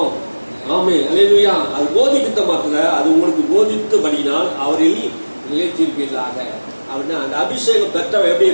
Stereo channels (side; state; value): both; inverted; correlation -1.00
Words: ஆமென். அல்லேலூயா. அது போதிக்கிட்ட மாத்திர அது உங்களுக்கு போதித்தபடினால் அவரில் நிலைத்திருப்பீர்களாக. அப்படின்னா அந்த அபிஷேகம் பெற்றவன் எப்படி